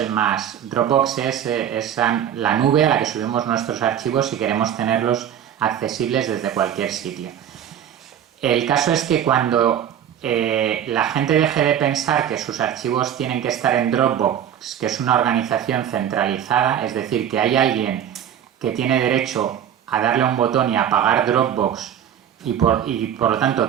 más... Dropbox es la nube a la que subimos nuestros archivos si queremos tenerlos accesibles desde cualquier sitio. El caso es que cuando la gente deje de pensar que sus archivos tienen que estar en Dropbox, que es una organización centralizada, es decir, que hay alguien que tiene derecho a darle a un botón y apagar Dropbox y por lo tanto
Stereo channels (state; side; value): quieter; left; 9.8 dB